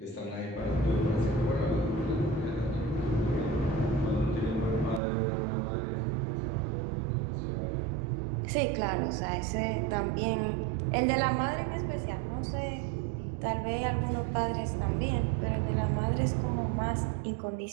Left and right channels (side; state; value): left; drops out; at 5.0 s